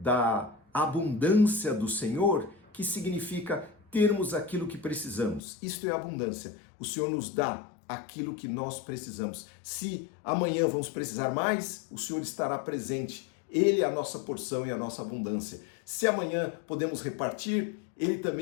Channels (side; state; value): right; drops out; at 5.4 s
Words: abundância do Senhor, que significa termos aquilo que precisamos. Isto é abundância. O Senhor nos dá aquilo que nós precisamos. Se amanhã vamos precisar mais, o Senhor estará presente. Ele é a nossa porção e a nossa abundância. Se amanhã podemos repartir, Ele